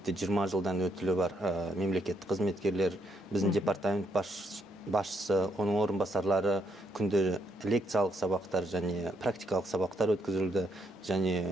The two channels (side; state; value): both; normal; correlation 0.75